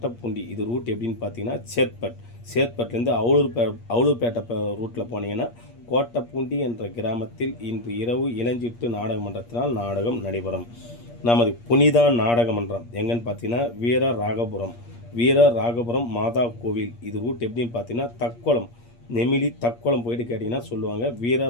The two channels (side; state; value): right; late; 8.5 ms